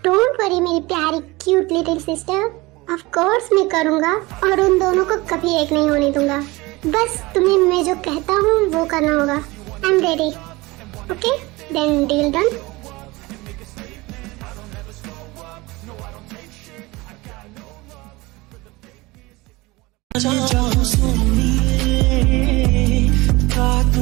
डोंट वरी मेरी प्यारी cute little sister, of course मैं करूँगा और उन दोनों को कभी एक नहीं होने दूंगा। बस तुम्हें मैं जो कहता हूँ वो करना होगा। I am ready. Okay, then deal done. जाओ सोनिए, का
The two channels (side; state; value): left; quieter; 22.1 dB